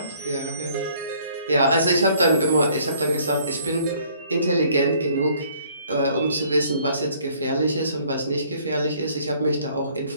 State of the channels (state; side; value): inverted; both; correlation -0.60